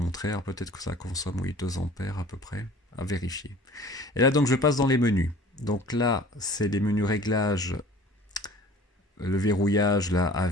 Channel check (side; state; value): both; normal; correlation 0.47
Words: Alors, peut-être que ça consomme, oui, 2 ampères à peu près, à vérifier. Et là, donc, je passe dans les menus. Donc là, c'est les menus réglages, le verrouillage là